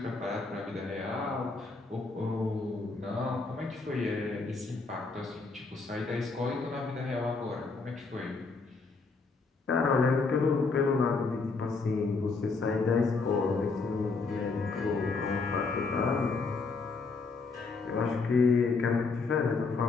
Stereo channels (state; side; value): quieter; right; 4.2 dB